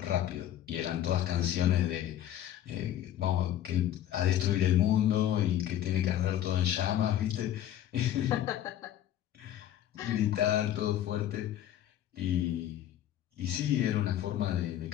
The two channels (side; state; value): right; quieter; 11.8 dB